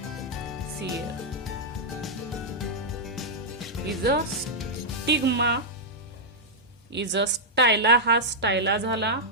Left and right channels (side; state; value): both; normal; correlation -0.07